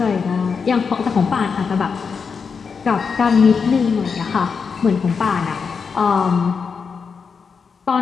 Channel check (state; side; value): quieter; right; 5.7 dB